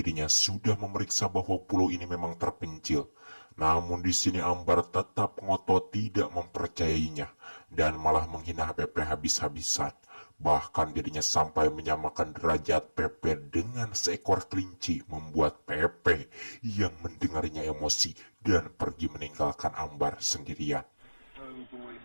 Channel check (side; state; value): both; inverted; correlation -1.00